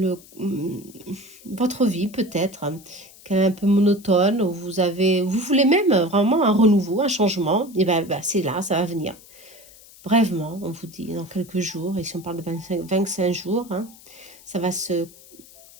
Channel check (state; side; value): noise; left; hiss, 22 dB below the sound